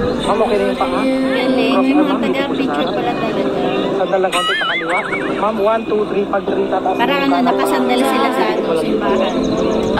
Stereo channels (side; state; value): both; identical; correlation 1.00